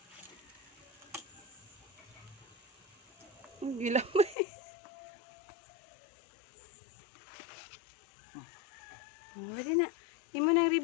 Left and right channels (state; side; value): drops out; right; at 4.4 s